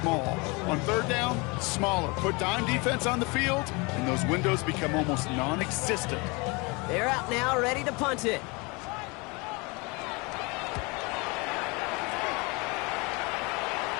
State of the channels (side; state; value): right; quieter; 27.7 dB